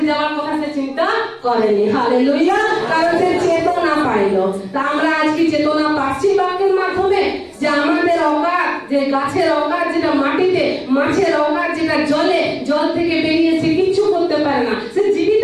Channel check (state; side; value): identical; both; correlation 1.00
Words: যাওয়ার কথা সে চিন্তা করেনি। হালেলুয়া, কারণ সে চেতনা পাইলো। তা আমরা আজকে চেতনা পাচ্ছি বাক্যের মাধ্যমে যে আমাদের অকাত, যে গাছের অকাত যেটা মাটিতে, মাছের অকাত যেটা জলে, জল থেকে বেরিয়েছে কিচ্ছু করতে পারে না, সে